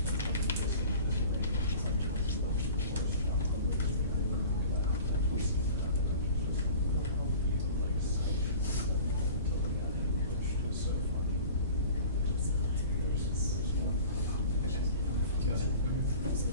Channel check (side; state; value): both; inverted; correlation -0.42